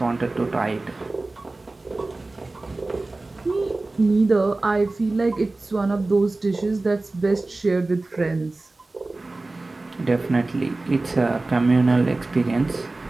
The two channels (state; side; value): quieter; left; 3.1 dB